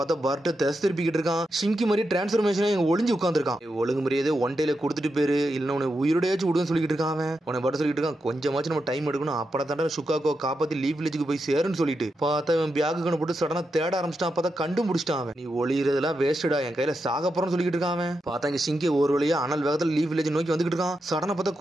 பருட்டோ தேச திருப்பிக்கிட்டு இருக்கான். சிங்கி மாதிரி டிரான்ஸ்பர்மேஷன் ஒளிஞ்சு உட்காந்துருக்கான். ஒழுங்கு முறையாதே ஒன் டேல கொடுத்துட்டு பேரு இல்ல உன உயிரோடையாச்சும் விடுன்னு சொல்லிட்டு இருக்கான். உன பட்ட சொல்லிட்டு இருக்கான், கொஞ்சமாச்சும் நம்ம டைம் எடுக்கணும், அப்பட தாண்டா சுக்காகோ காப்பாத்தி லீஃப் வில்லேஜுக்கு போய் சேருன்னு சொல்லிட்டு. பார்த்தா இவன் பேக்கு போட்டு சடனா தேட ஆரம்பிச்சிட்டான். பார்த்தா கண்டுபிடிச்சிட்டான் அவன். நீ ஒளியறதெல்லாம் வேஸ்டா, என் கையில சாக போறன்னு சொல்லிட்டு இருக்கான். பார்த்தா இங்க சிங்கி ஒரு வழியா அனல் வேகத்துல லீஃப் வில்லேஜ் நோக்கி வந்துட்டு இருக்கான். சடனா பார்த்தா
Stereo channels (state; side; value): normal; both; correlation 0.86